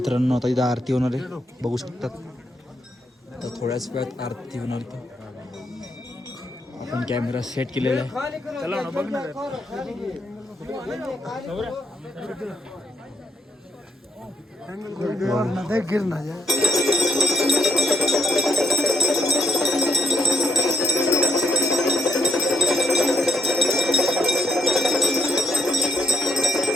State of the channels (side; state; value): both; normal; correlation 0.76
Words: आता इथं आरती होणार आहे, बघू शकतात. तर थोड्याच वेळात आरती होणार आहे. आपण कॅमेरा सेट केलेला आहे. चला ना बघ ना.